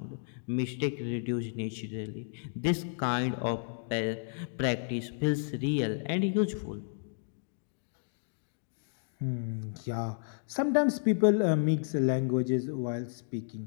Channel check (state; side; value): silent; right; digital silence